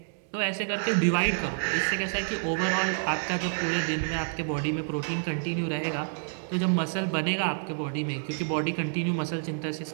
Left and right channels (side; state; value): left; silent; digital silence